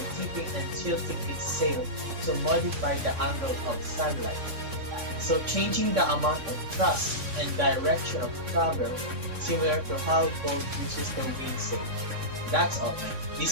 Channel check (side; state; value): left; late; 3.6 ms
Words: tipping and tilting its sail to modify the angle of sunlight, so changing the amount of thrust and direction of travel, similar to how boat uses the wind sail. That's all.